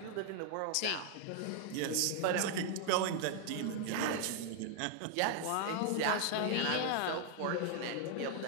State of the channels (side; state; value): both; different; correlation 0.00